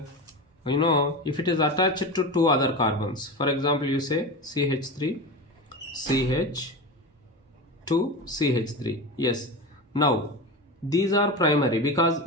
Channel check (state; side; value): normal; both; correlation 0.24